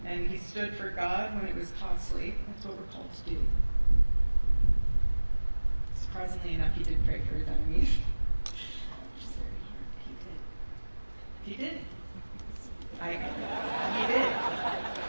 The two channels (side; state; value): both; inverted; correlation -1.00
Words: And he stood for God when it was costly. That's what we're called to do. Surprisingly enough, he did pray for his enemies. Which is very hard, but he did. He did. He did.